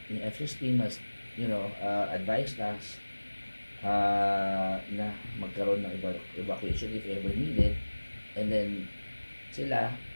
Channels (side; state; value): both; inverted; correlation -1.00